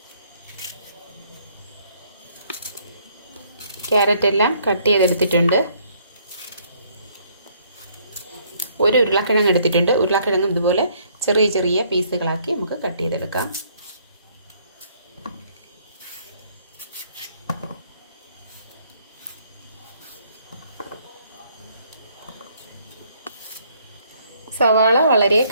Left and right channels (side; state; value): both; inverted; correlation -0.65